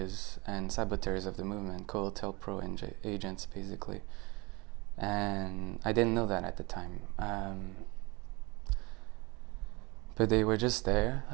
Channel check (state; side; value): quieter; left; 25.9 dB